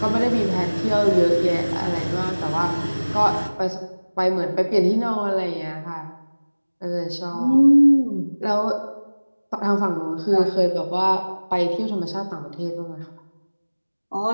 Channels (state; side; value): inverted; both; correlation -1.00